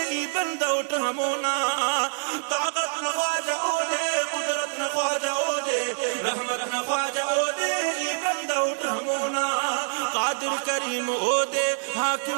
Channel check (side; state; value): left; silent; digital silence